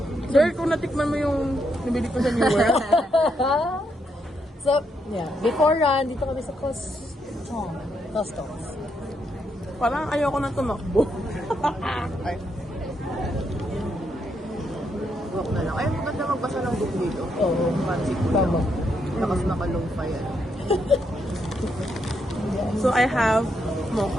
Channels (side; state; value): both; normal; correlation 0.78